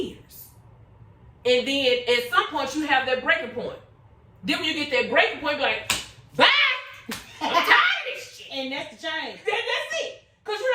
And then at some point you have that breaking point. Then when you get that breaking point, you're like, bye! I'm tired of this shit. And that's the change. That's it. Because you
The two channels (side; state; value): both; identical; correlation 1.00